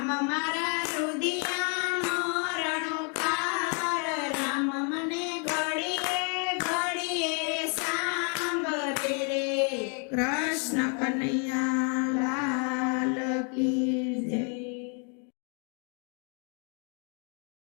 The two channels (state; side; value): quieter; right; 39.8 dB